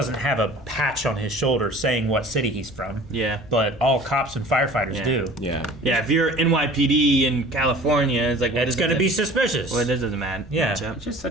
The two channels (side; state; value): both; normal; correlation 0.45